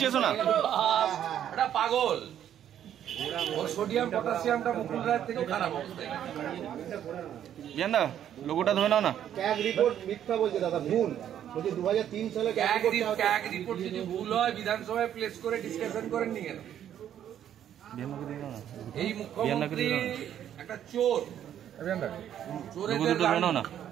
না, এটা পাগল। সোডিয়াম পটাশিয়ামটা মুকুল রায়ের থেকেও খারাপ অবস্থায়। বিয়ান্দা লোগোটা ধরে নাও না। ক্যাগ রিপোর্ট মিথ্যা বলছে দাদা, ভুল বলছে। 2003 সালে ক্যাগ রিপোর্ট যদি ভুল হয় বিধানসভায় প্লেস করে ডিসকাশন করেননি কেন? এই মুখ্যমন্ত্রী একটা চোর, চোরেদের না,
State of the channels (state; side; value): quieter; left; 10.3 dB